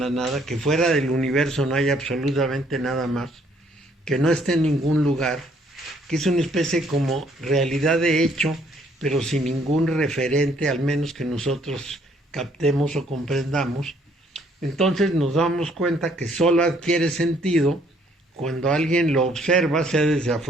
nada, que fuera del universo no hay absolutamente nada más, que no esté en ningún lugar, que es una especie como realidad de hecho, pero sin ningún referente, al menos que nosotros captemos o comprendamos. Entonces nos damos cuenta que solo adquiere sentido cuando alguien lo observa, sea desde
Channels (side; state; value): both; normal; correlation 0.65